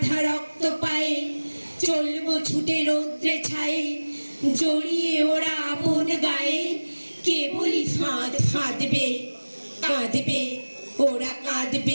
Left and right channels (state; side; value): inverted; both; correlation -1.00